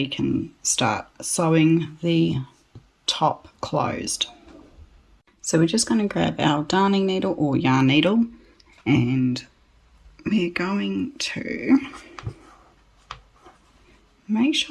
can start sewing the top closed. So we're just going to grab our darning needle or yarn needle, and we're going to make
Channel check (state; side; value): identical; both; correlation 1.00